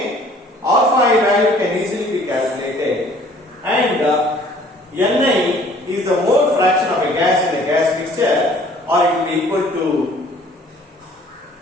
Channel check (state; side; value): normal; both; correlation 0.55